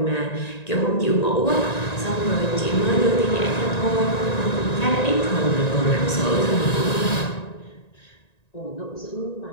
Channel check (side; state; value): right; late; 1.9 ms